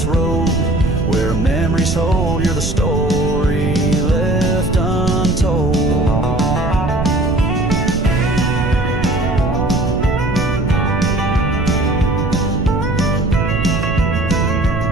road where memories hold. You're the story left untold.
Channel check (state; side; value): noise; right; rumble, 3 dB below the sound